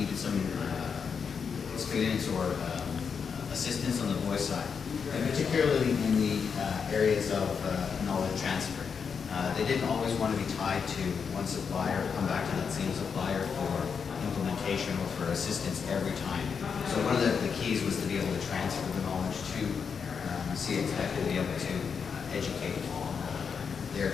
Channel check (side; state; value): right; quieter; 6.2 dB